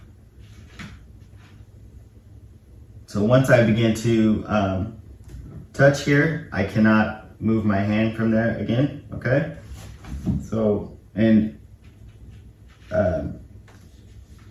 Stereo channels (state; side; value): identical; both; correlation 1.00